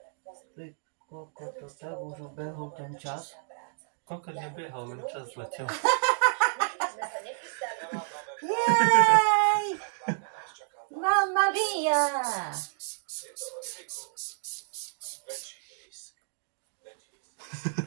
pozri. Ty koľko to tak už ubehol ten čas. Koľko nebehol, len čas letel. Jej! Mamma mia!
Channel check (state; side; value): silent; left; digital silence